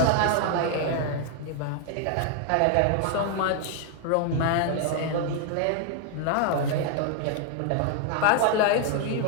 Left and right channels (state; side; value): different; both; correlation 0.00